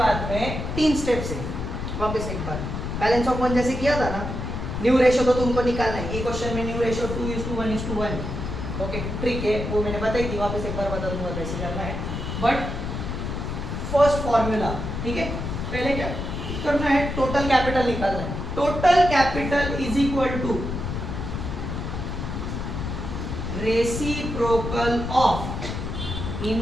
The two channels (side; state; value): left; noise; rumble, 4 dB below the sound